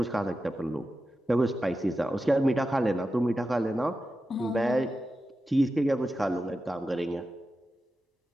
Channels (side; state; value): both; normal; correlation 0.91